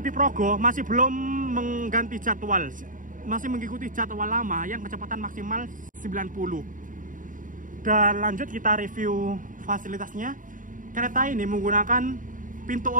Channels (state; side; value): late; left; 0.38 ms